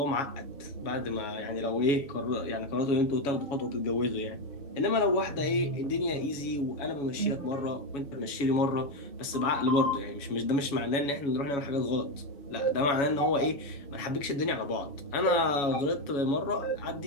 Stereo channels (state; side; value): late; right; 7.1 ms